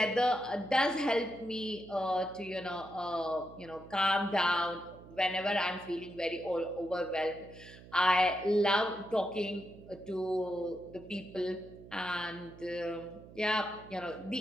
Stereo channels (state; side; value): noise; right; hum, 18 dB below the sound